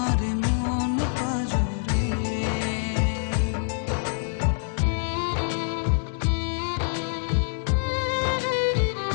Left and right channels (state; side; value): silent; right; digital silence